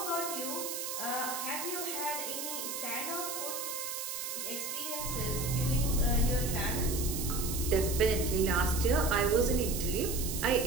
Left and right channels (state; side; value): noise; right; hiss, 4 dB below the sound